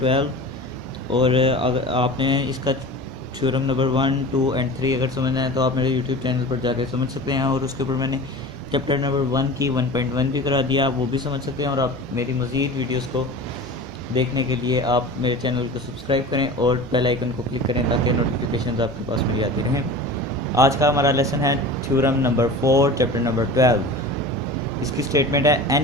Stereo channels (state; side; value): noise; left; hum, 24 dB below the sound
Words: और अगर आपने इसका थ्योरम नंबर 1, 2 एंड 3 अगर समझना है तो आप मेरे यूट्यूब चैनल पर जाकर समझ सकते हैं। और उसके ऊपर मैंने चैप्टर नंबर 1 की 1.1 भी करा दिया, आप वो भी समझ सकते हैं। और आप मेरी मज़ीद वीडियोस को देखने के लिए आप मेरे चैनल को सब्सक्राइब करें और बेल आइकन को क्लिक करें ताकि नोटिफिकेशंस आपके पास मेरी आती रहें। आज का हमारा लेसन है थ्योरम नंबर 4 चैप्टर नंबर 12। इसकी स्टेटमेंट है